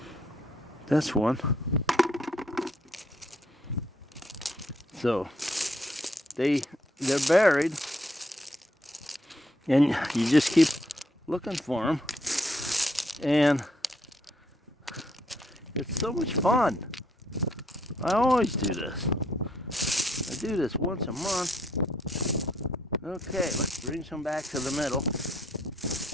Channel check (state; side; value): normal; both; correlation 0.71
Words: That's one. So they're buried, and you just keep looking for them, and it's so much fun. I always do this. I do this once a month. Okay, let's bring some back to the middle.